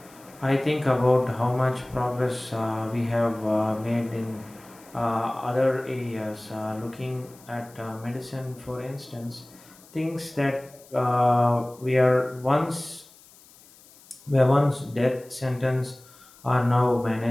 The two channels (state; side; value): noise; left; hiss, 25 dB below the sound